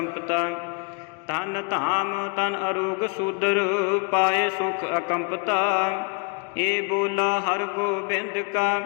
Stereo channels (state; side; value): quieter; right; 36.4 dB